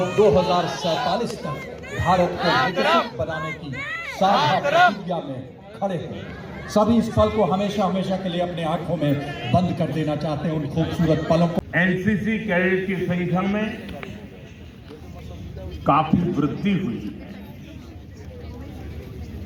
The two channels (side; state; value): both; identical; correlation 1.00